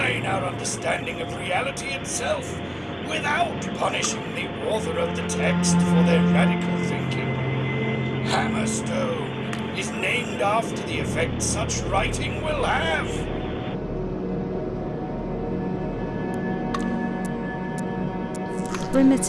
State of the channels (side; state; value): both; identical; correlation 1.00